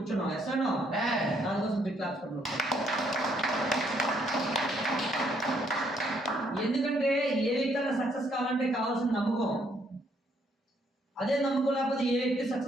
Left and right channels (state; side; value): normal; both; correlation 0.70